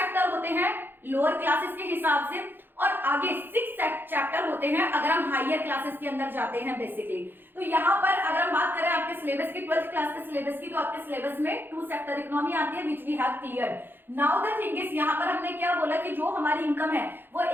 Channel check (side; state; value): left; late; 0.098 ms